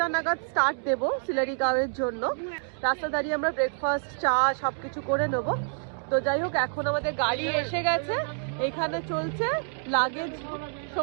নাগাদ স্টার্ট দেবো সিলারিগাঁওয়ের জন্য। রাস্তা দাঁড়িয়ে আমরা ব্রেকফাস্ট, চা সবকিছু করে নেব। তো যাই হোক, এখন আমাদের গাড়ি এসে গেছে, এখানে চলছে লাগেজ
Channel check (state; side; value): silent; left; 58 dB below the other